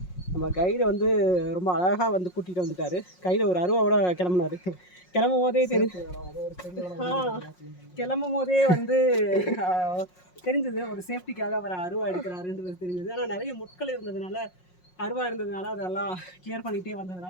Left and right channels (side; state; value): right; late; 5.5 ms